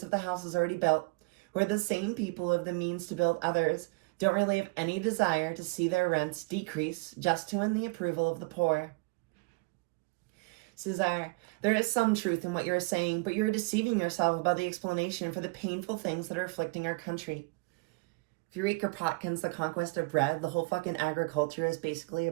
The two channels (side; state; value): left; quieter; 27.4 dB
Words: of the houses already built, who are the same people who have the means to build others, don't really have any desire to see their rents decrease just to win the approval of the poor. Cesar, there is some truth in what you are saying, but you are deceiving yourself about the explanation for the painful things that are afflicting our country. If you read Kropotkin's The Conquest of Bread, the whole fucking agriculture is basically